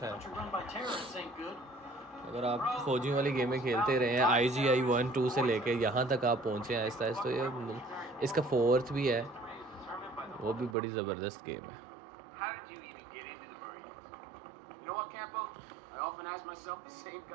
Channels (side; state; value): left; drops out; at 10.8 s